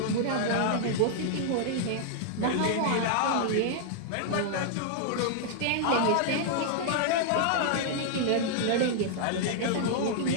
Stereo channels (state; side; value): different; both; correlation -0.01